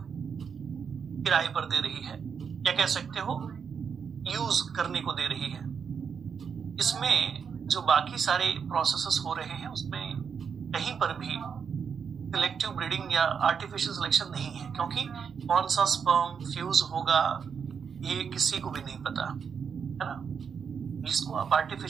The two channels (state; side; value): quieter; left; 6.6 dB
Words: किराए पर दे रही है, या कह सकते हो यूज करने को दे रही है। इसमें जो बाकी सारे प्रोसेसेस हो रहे हैं उसमें कहीं पर भी सिलेक्टिव ब्रीडिंग या आर्टिफिशियल सिलेक्शन नहीं है, क्योंकि कौन सा स्पर्म फ्यूज होगा ये किसी को भी नहीं पता, है ना। इसको आप